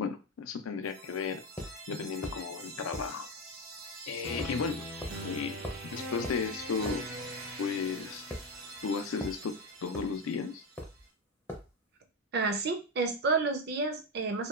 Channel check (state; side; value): normal; both; correlation 0.12